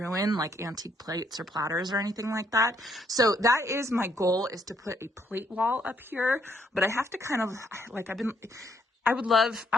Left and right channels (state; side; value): normal; both; correlation 0.70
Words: like antique plates or platters or anything like that. So that is my goal, is to put a plate wall up here, but I have to kind of like, I would